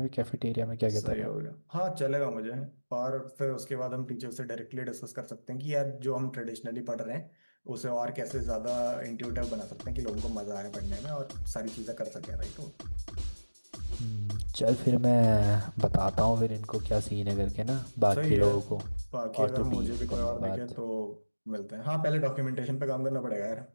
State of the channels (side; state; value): both; inverted; correlation -1.00